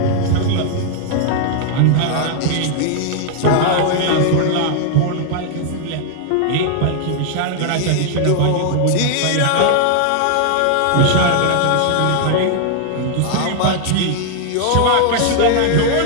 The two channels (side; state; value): both; different; correlation 0.00